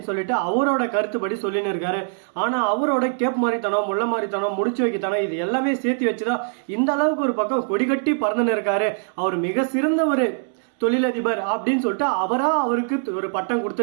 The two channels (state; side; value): silent; left; digital silence